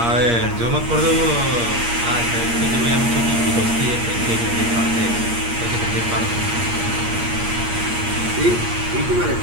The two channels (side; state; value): left; late; 8.6 ms